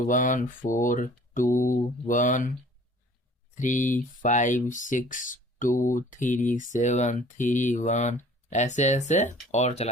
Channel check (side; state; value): both; normal; correlation 0.51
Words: ऐसे ऐसे और